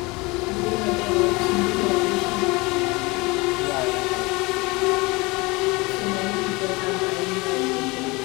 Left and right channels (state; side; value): quieter; right; 25.0 dB